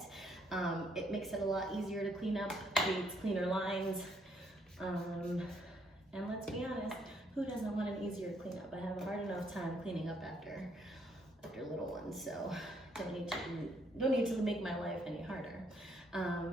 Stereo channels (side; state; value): both; normal; correlation 0.71